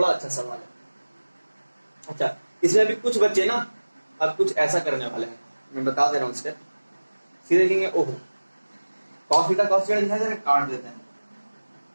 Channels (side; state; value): both; inverted; correlation -1.00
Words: अच्छा सवाल है। अच्छा, इसमें अभी कुछ बच्चे ना अब कुछ ऐसा करने वाले हैं, मैं बता दे रहा हूँ स्टेप। सीधे लिखेंगे ओहो cos थीटा दिखाई दे रहा है, काट देते हैं,